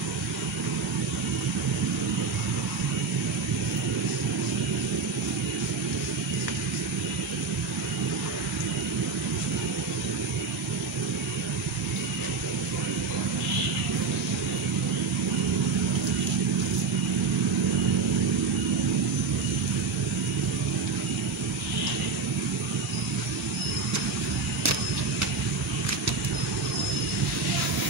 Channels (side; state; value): left; quieter; 4.6 dB